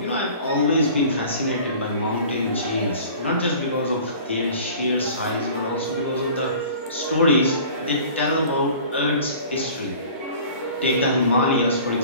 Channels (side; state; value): both; inverted; correlation -0.45